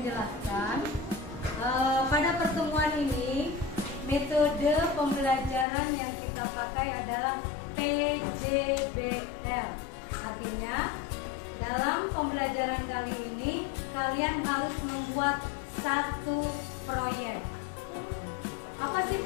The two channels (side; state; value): right; drops out; at 5.7 s